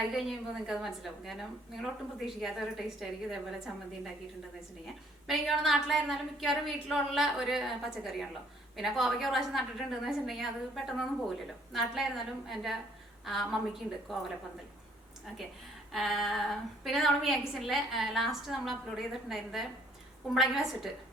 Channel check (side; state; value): both; normal; correlation 0.62